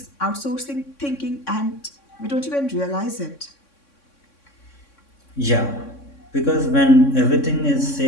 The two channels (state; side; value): late; right; 3.6 ms